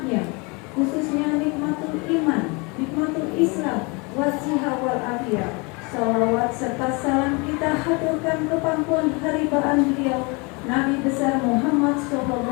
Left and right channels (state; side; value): quieter; right; 29.3 dB